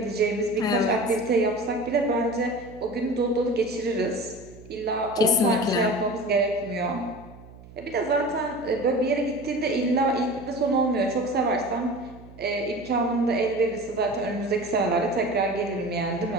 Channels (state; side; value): noise; right; hum, 19 dB below the sound